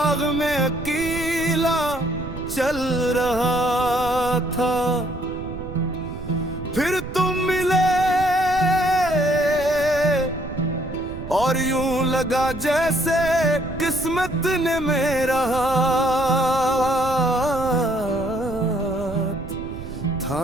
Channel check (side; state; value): right; noise; rumble, 10 dB below the sound